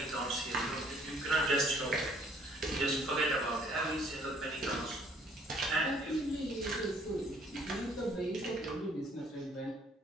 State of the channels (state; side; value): normal; both; correlation 0.60